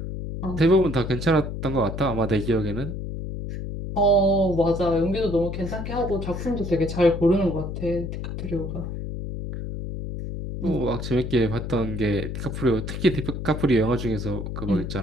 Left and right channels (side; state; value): left; noise; hum, 6 dB below the sound